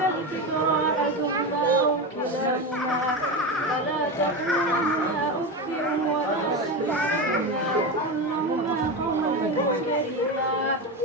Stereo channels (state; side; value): normal; both; correlation 0.18